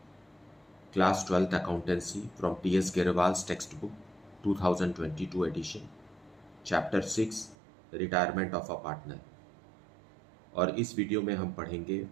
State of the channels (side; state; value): left; drops out; at 7.6 s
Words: class 12th accountancy from T S Grewal's text book 2022 edition, chapter 6 retirement of a partner. और इस video में हम पढ़ेंगे